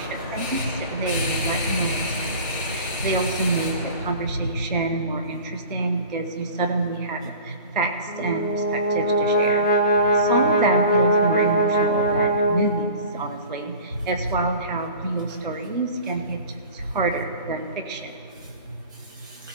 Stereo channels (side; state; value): both; inverted; correlation -0.40